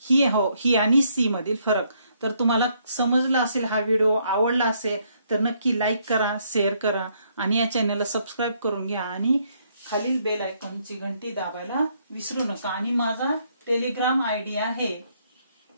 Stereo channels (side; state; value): both; inverted; correlation -0.71